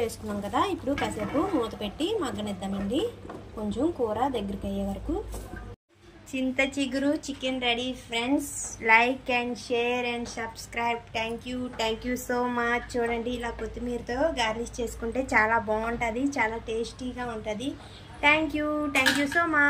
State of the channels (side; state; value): both; identical; correlation 1.00